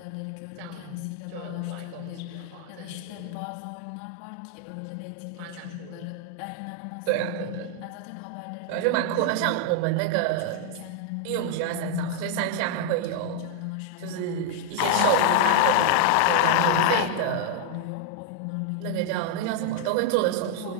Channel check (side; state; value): both; different; correlation 0.00